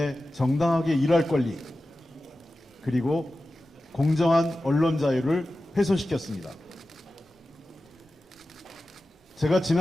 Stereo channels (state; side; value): normal; both; correlation 0.94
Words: 정당하게 일할 권리, 그리고 공정한 언론 자유를 훼손시켰습니다. 제가